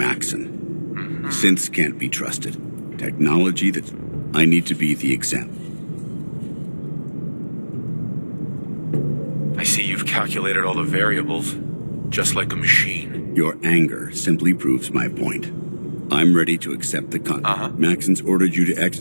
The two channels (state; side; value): inverted; both; correlation -1.00